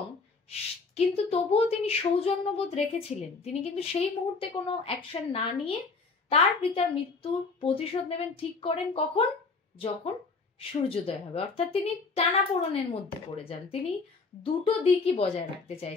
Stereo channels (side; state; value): right; quieter; 4.3 dB